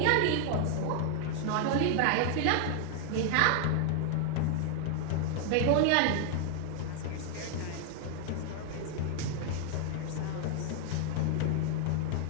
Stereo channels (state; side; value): different; both; correlation 0.00